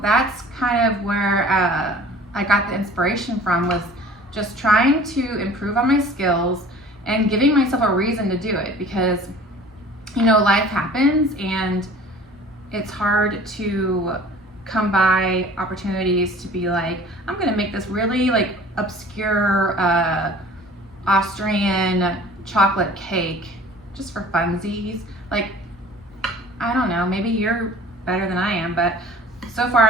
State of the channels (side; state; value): both; normal; correlation 0.47